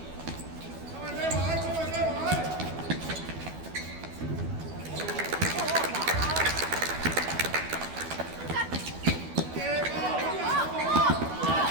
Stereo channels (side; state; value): left; late; 12 ms